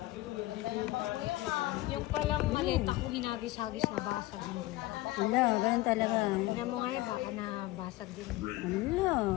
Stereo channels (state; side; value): quieter; right; 18.4 dB